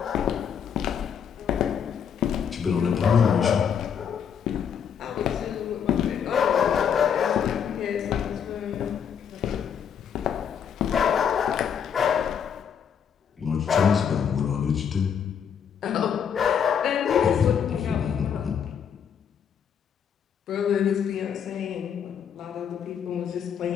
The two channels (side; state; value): right; quieter; 7.8 dB